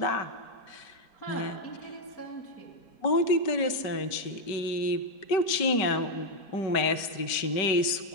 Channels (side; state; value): right; late; 5.2 ms